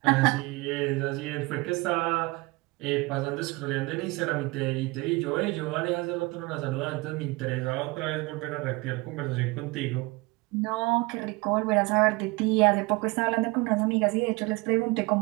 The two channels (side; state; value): left; quieter; 24.4 dB